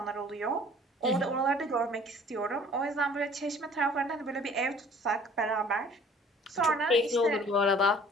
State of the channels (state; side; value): normal; both; correlation 0.52